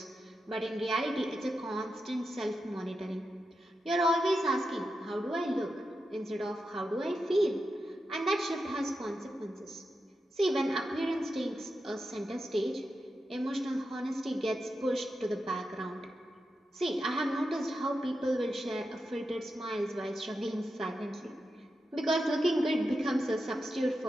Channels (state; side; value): normal; both; correlation 0.88